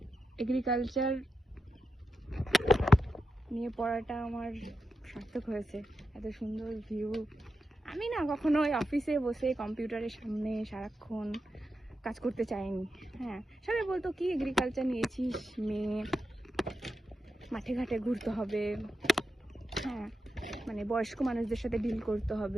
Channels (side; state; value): both; normal; correlation 0.88